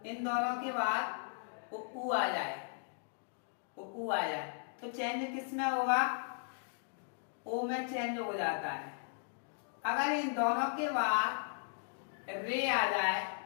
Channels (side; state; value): right; silent; digital silence